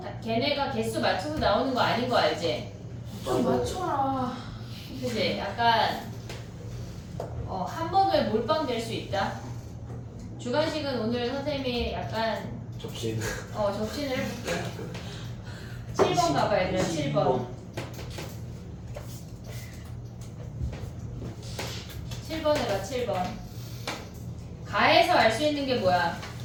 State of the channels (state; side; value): identical; both; correlation 1.00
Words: 걔네가 개수 맞춰서 나오는 거 아닌 거 알지? 좀 맞춰라. 그치? 약간 한 번에 몰빵 될 수 있다. 주관식은 오늘 선생님이 약간 접신. 접신을 해볼게. 7번 가봐 얘들아. 7번. 7번 해봐. 7번. 가에서 알 수 있는 게 뭐야?